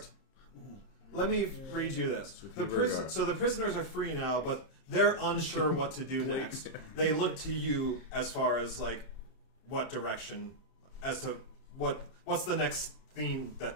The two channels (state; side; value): late; right; 30 ms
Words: Let me read you this. The prisoners are free now, but they're unsure what to do next. They look to you as far as like what direction, as to what's the next thing that